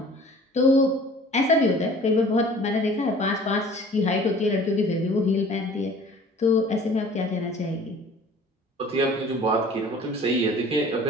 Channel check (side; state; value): both; normal; correlation 0.48